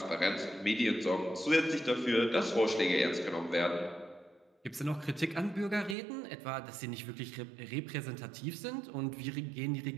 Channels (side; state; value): left; drops out; at 6.0 s